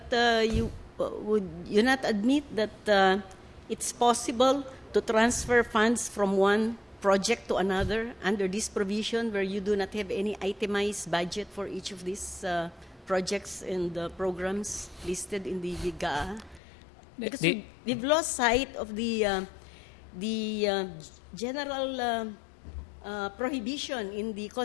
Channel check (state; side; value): drops out; right; at 16.6 s